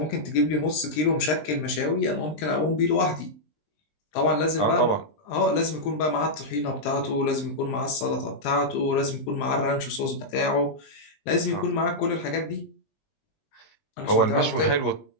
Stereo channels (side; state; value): right; late; 20 ms